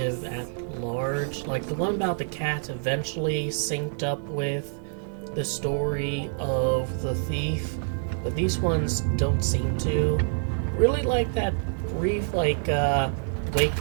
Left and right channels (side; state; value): left; silent; 59 dB below the other